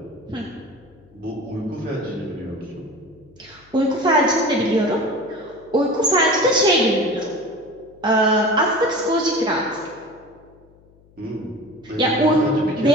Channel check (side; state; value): left; noise; hum, 29 dB below the sound